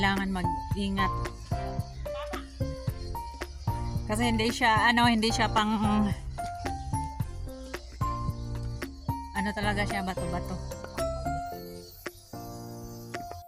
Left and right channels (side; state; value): both; identical; correlation 1.00